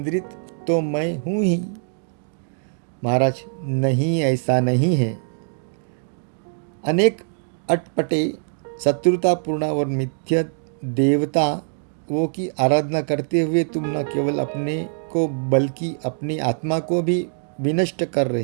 तो मैं हूँ ही। महाराज, नहीं, ऐसा नहीं है। अनेक अटपटे, शत्रुतापूर्ण और मिथ्या देवताओं की आराधना करते हुए तुम न केवल अपने को बल्कि अपनी आत्मा को भी विनष्ट कर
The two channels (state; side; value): silent; left; digital silence